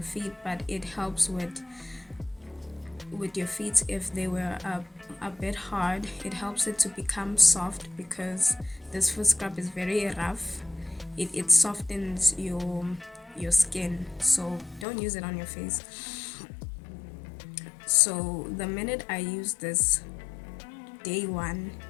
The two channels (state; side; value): drops out; right; at 14.9 s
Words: feet, but it helps with with your feet if they were a bit hard. It helps it to become soft because this foot scrub is very rough. It softens your skin, so don't use it on your face. So the minute I used this, day one,